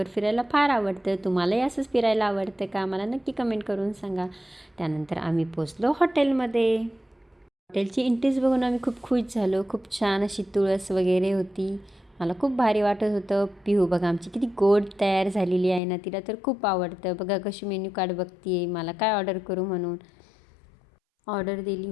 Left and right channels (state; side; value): drops out; right; at 15.8 s